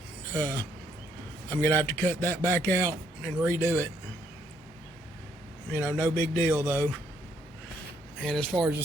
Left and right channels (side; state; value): both; normal; correlation 0.71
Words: I'm gonna have to cut that back out and redo it. You know, no big deal though. And as far as the